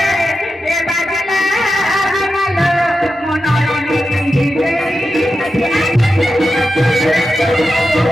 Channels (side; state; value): both; normal; correlation 0.90